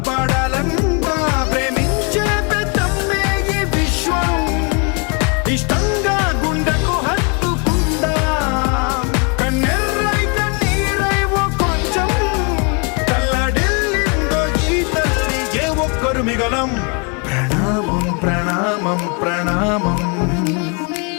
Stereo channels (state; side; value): quieter; right; 34.5 dB